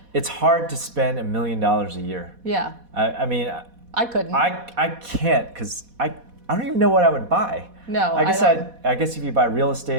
it's hard to spend $1 million a year. Yeah. I mean, I couldn't. I can't because I don't even know what I would buy. No, I guess if you buy real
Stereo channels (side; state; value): left; late; 4.1 ms